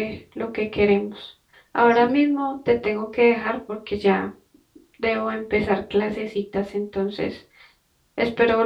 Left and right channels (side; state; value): both; identical; correlation 1.00